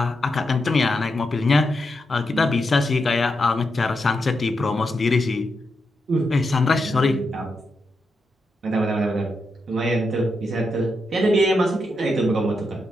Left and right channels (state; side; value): normal; both; correlation 0.85